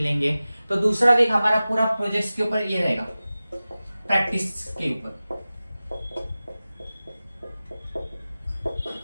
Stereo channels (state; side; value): inverted; both; correlation -0.96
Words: तो दूसरा वीक हमारा पूरा प्रोजेक्ट्स के ऊपर ये रहेगा, प्रैक्टिस के ऊपर।